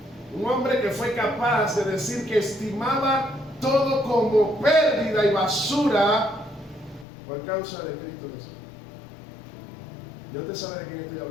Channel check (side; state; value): right; drops out; at 7.1 s